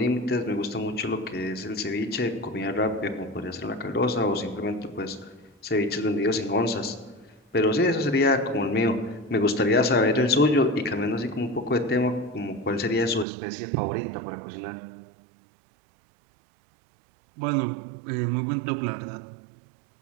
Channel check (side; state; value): left; drops out; at 13.2 s